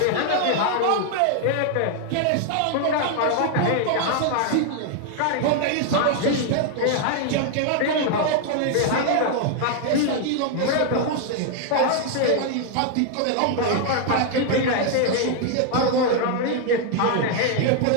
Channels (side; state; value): both; different; correlation 0.00